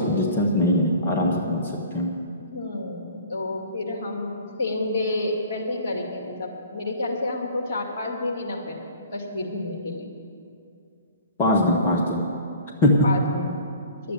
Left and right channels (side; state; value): both; inverted; correlation -0.45